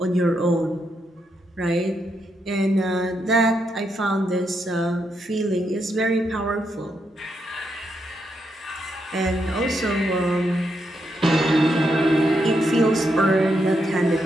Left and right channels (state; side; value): normal; both; correlation 0.81